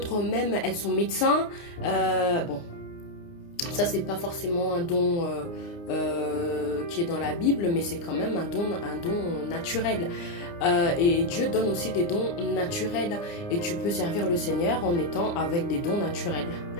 même, elles sont médecins. Bon, ça, c'est pas forcément un don qui est dans la Bible, mais c'est quand même un don naturel. Et Dieu donne aussi des dons naturels et tu peux servir le Seigneur en étant avec des dons naturels.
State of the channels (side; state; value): right; late; 29 ms